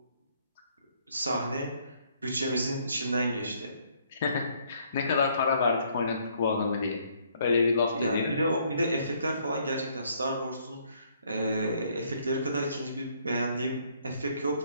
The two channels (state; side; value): inverted; both; correlation -0.66